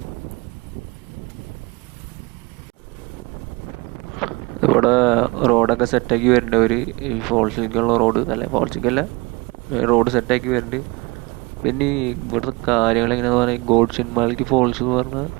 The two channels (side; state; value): left; quieter; 25.8 dB